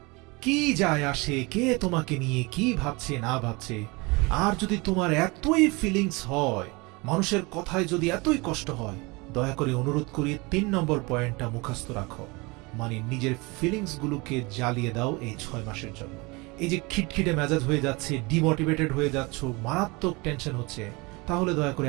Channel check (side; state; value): left; quieter; 26.0 dB